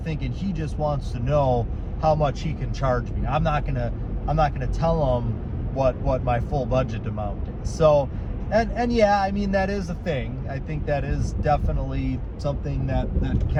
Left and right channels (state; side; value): identical; both; correlation 1.00